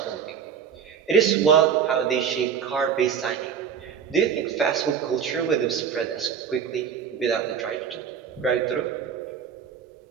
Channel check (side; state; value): left; quieter; 7.5 dB